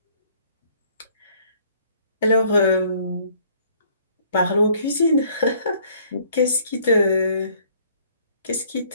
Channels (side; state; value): both; inverted; correlation -0.61